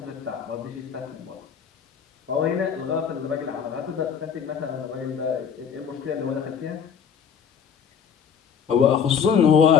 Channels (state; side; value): quieter; right; 7.4 dB